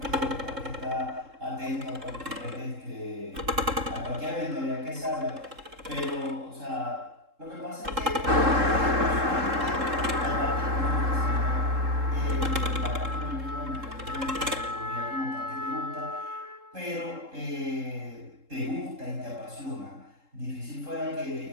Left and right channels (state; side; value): late; left; 3.7 ms